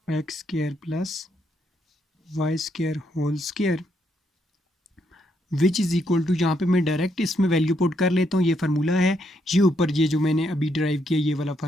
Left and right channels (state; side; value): normal; both; correlation 0.76